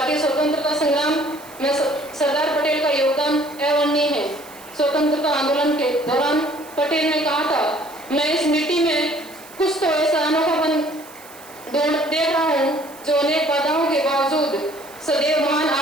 स्वतंत्रता संग्राम में सरदार पटेल का योगदान अवर्णनीय है। स्वतंत्रता आंदोलन के दौरान पटेल ने कहा था, मैं इस मिट्टी में कुछ तो ऐसा अनोखापन देख रहा हूँ जो अनेक बाधाओं के बावजूद सदैव महान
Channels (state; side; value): noise; right; hiss, 21 dB below the sound